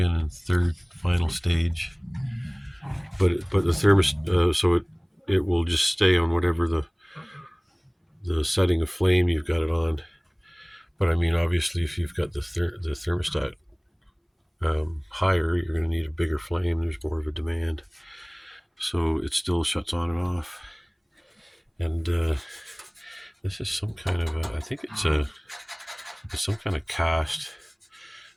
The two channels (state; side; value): identical; both; correlation 1.00